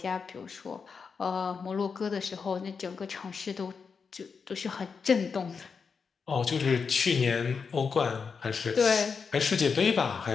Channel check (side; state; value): right; quieter; 5.6 dB